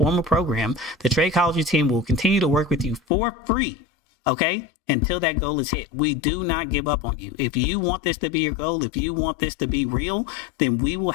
program, the Tradechology team will continue to work with you for free, okay, until that goal is hit. We do not give up on you. If you want this to be your goal, if you want this to be real, then we will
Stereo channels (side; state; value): right; drops out; at 3.0 s